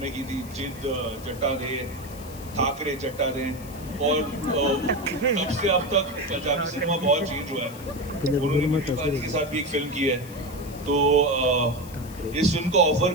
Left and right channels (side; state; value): left; noise; hiss, 19 dB below the sound